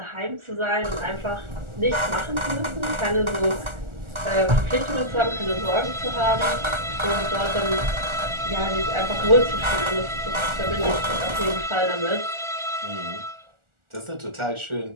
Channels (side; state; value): left; late; 1.4 ms